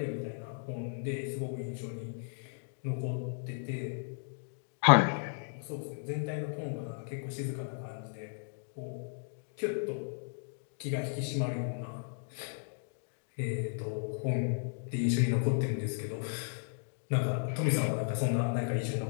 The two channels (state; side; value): silent; right; digital silence